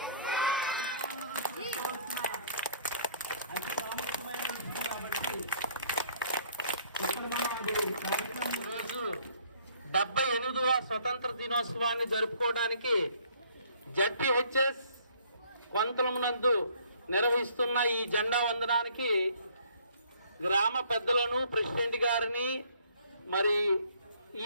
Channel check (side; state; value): both; inverted; correlation -0.60